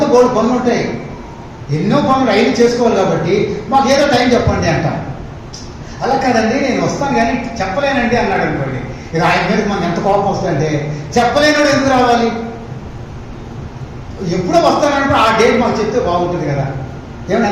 బోర్డు పనులు ఉంటాయి, ఎన్నో పనులు రైలు చేసుకోవాలి. కాబట్టి మాకు ఏదో టైం చెప్పండి అంటాం. అలా కాదండి నేను వస్తాను కానీ చెప్పలేనండి అన్నాడు అనుకోండి, ఇక ఆయన మీద మనకు ఎంత కోపం వస్తుందంటే, చెప్పలేనాడు ఎందుకు రావాలి? ఎప్పుడో వస్తానంటే ఆ డేట్ మాకు చెప్తే బాగుంటుంది కదా. ఏమన్నా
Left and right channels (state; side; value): identical; both; correlation 1.00